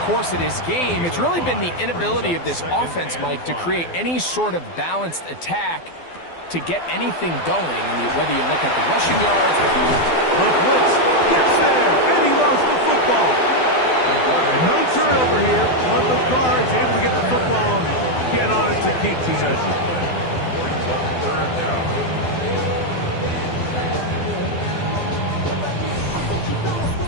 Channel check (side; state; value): right; late; 12 ms